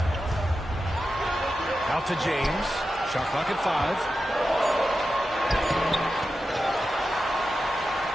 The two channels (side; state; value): both; normal; correlation 0.91